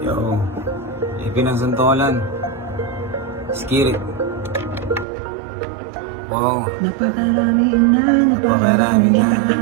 ipinagsantolan. Skirit. Wow. Napakarami na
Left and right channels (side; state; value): left; drops out; at 5.1 s